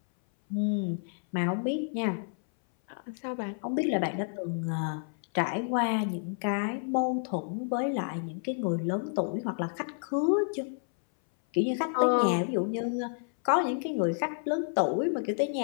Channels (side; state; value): right; silent; 58 dB below the other